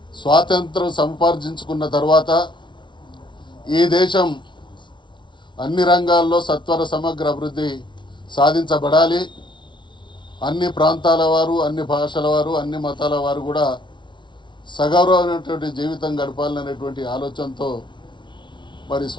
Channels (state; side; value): late; right; 0.23 ms